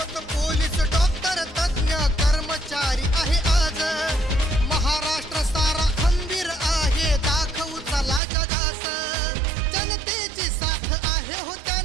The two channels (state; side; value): drops out; left; at 8.2 s